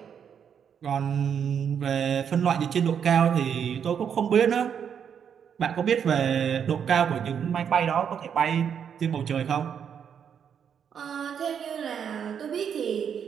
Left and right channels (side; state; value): left; quieter; 7.8 dB